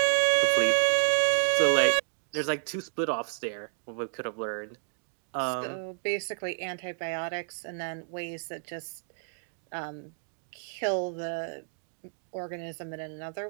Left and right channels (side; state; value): left; silent; 58 dB below the other